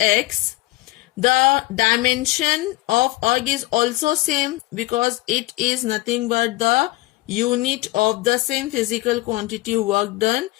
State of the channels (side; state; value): right; quieter; 19.1 dB